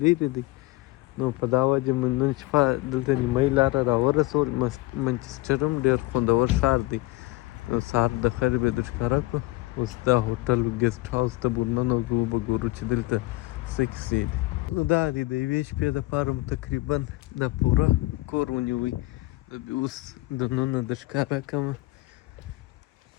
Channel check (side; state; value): right; quieter; 20.3 dB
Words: لرې دی. نو په دا وجه مو نن شپه دلته نیمایي لاره راورسول. منچسټر هم ډېر خوندور ښار دی. نو سهار د خیر به در ښکاره کړو. اوس دا هوټل ګسټ هاوس ته به ورننوځو، به ګورو چې دلته څه کیسې دي. نو دا دی د یوې شپې دپاره مو تقریبا دا پوره کور ونیوی. اوس دننه در ښکاره کړمه